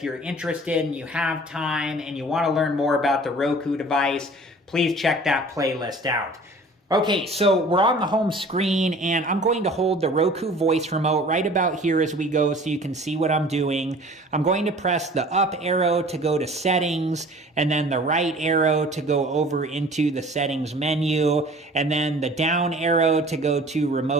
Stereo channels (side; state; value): both; normal; correlation 0.47